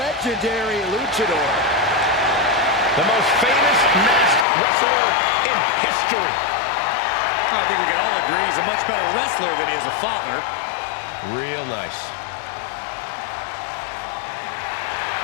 luchador. The most famous masked wrestler in history. I think we can all agree he's a much better wrestler than he is a father. Real nice.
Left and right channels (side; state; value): right; drops out; at 4.5 s